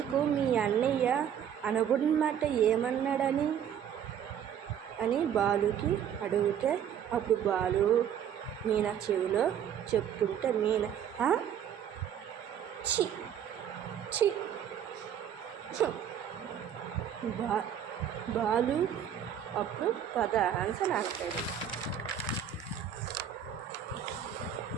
మీ అన్నయ్య అనకూడనమాట ఏమన్నాడని అని బాలుకి అడిగితే, అప్పుడు బాలు మీనా చెవిలో చెప్తుంటే మీనా ఛీ బాలు అప్పుడు పద ఆన్సర్ అంటాడు.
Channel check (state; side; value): quieter; left; 9.1 dB